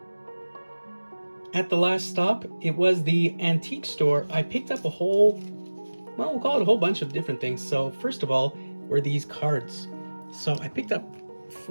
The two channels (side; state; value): both; inverted; correlation -1.00